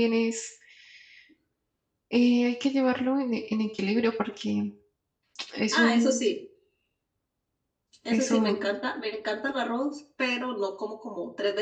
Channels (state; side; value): identical; both; correlation 1.00